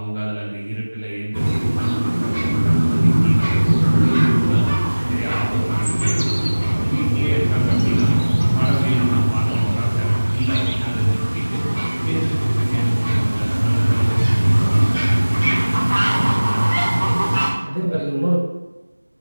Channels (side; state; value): both; inverted; correlation -1.00